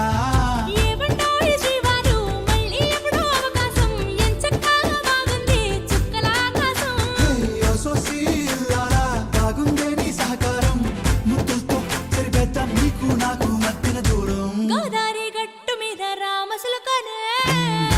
ఏమంటాయి శ్రీవారు మళ్ళీ ఎప్పుడో అవకాశం ఎంచక్కా బాగుంది చుక్కల ఆకాశం సోసి లాలా బాగుందే నీ సహకారం ముద్దులతో సరిపెద్దాం నీకు నాకు మధ్యన దూరం గోదారి గట్టు మీద రామసులకనే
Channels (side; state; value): both; identical; correlation 1.00